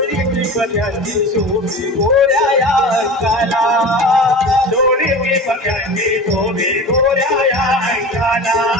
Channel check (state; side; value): normal; both; correlation 0.33